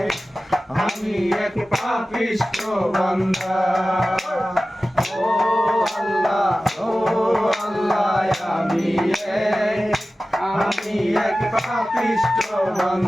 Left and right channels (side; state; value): both; normal; correlation 0.95